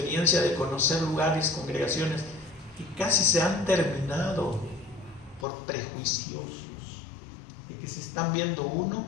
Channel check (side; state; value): right; drops out; at 5.5 s